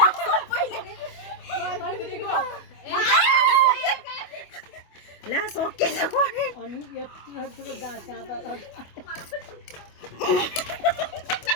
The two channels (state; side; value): late; right; 25 ms